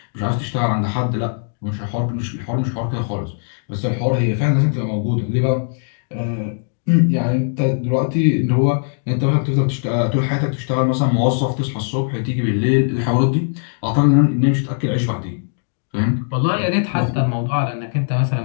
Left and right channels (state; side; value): silent; right; digital silence